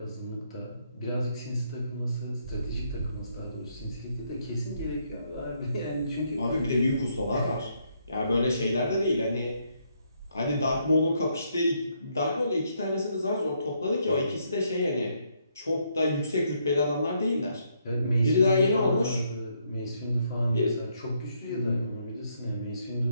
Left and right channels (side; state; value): both; inverted; correlation -0.74